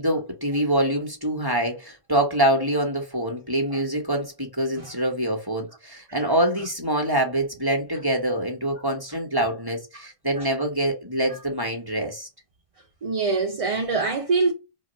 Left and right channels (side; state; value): left; late; 1.1 ms